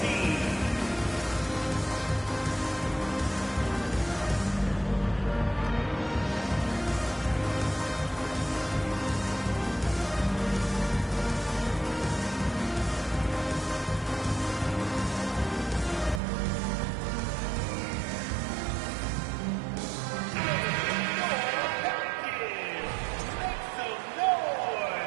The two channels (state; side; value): drops out; left; at 16.2 s